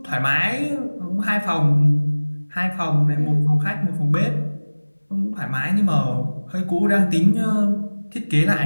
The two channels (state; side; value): inverted; both; correlation -1.00